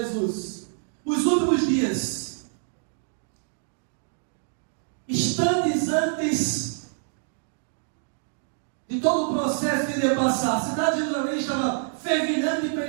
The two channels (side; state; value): left; silent; digital silence